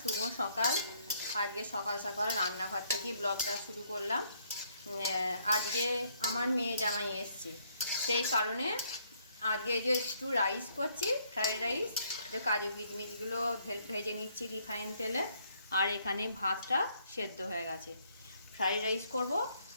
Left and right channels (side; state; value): both; inverted; correlation -0.69